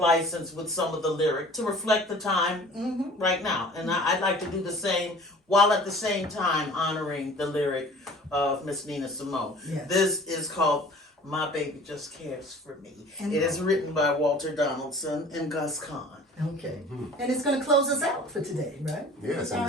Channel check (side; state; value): both; normal; correlation 0.46